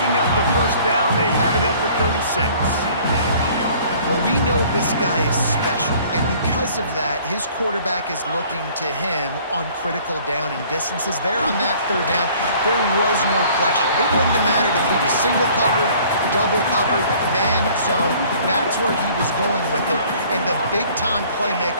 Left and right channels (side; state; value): both; inverted; correlation -0.54